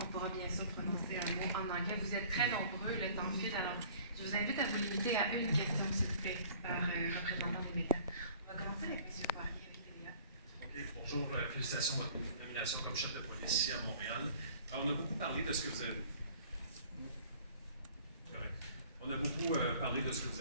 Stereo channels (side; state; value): both; inverted; correlation -0.51